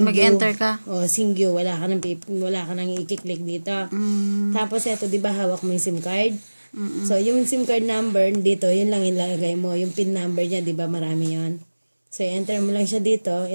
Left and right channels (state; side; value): inverted; both; correlation -1.00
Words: Mag-enter ka. O, Singyu. Wala ka nang i-click dito. Tapos, eto, di ba hawak mo yung SIM card? So, yung SIM card number dito, yun lang ilalagay mo. Yung PIN number niya, di ba marami yon. So, enter mo lang siya dito.